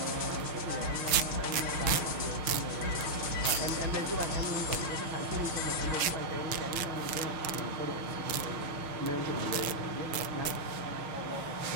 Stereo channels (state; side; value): late; left; 6.6 ms